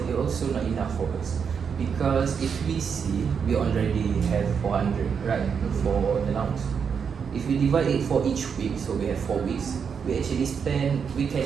it also not enough for us. Because if we see, we already have 400, right, for the allowance. If we divide it for each week, so we have 4 weeks, we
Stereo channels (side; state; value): left; quieter; 6.6 dB